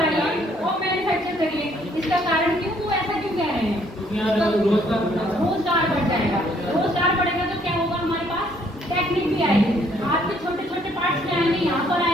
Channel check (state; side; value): normal; both; correlation 0.65